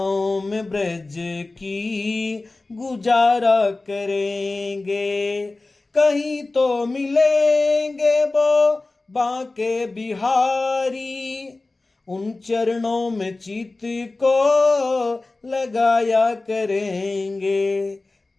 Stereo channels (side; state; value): right; quieter; 3.2 dB